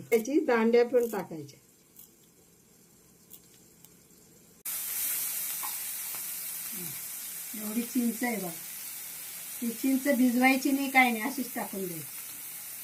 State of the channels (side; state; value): both; identical; correlation 1.00